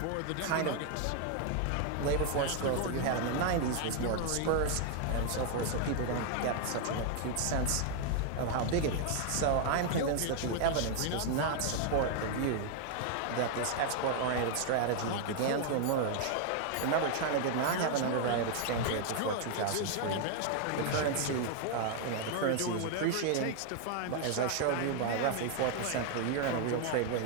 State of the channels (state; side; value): different; both; correlation 0.00